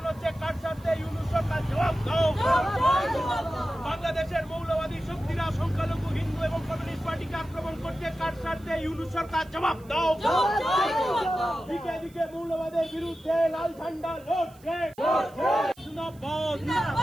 হচ্ছে, কার স্বার্থে? ইউনূস সরকার জবাব দাও। বাংলাদেশের মৌলবাদী শক্তিরা সংখ্যালঘু হিন্দু এবং কমিউনিস্ট পার্টিকে আক্রমণ করছে, কার স্বার্থে? ইউনূস সরকার জবাব দাও। দিকে দিকে মৌলবাদের বিরুদ্ধে লাল ঝান্ডা লড়ছে। জিন্দাবাদ,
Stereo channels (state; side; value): noise; right; hiss, 27 dB below the sound